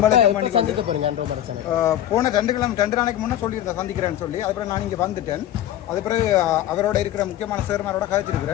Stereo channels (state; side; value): quieter; right; 12.2 dB